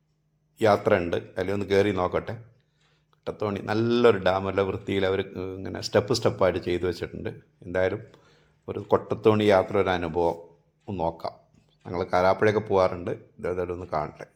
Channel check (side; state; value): both; identical; correlation 1.00